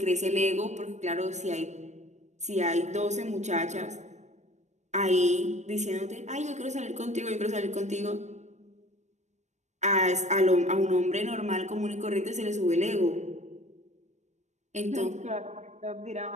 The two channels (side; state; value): left; late; 0.34 ms